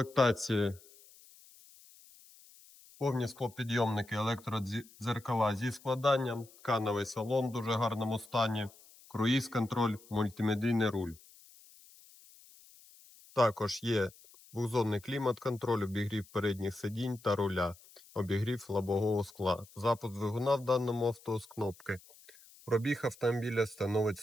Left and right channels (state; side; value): noise; left; hiss, 24 dB below the sound